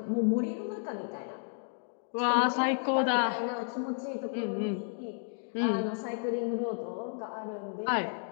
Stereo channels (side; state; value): right; silent; 56 dB below the other